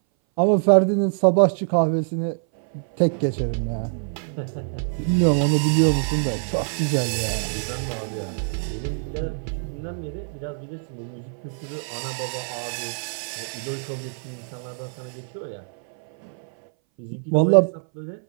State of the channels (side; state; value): left; silent; 60 dB below the other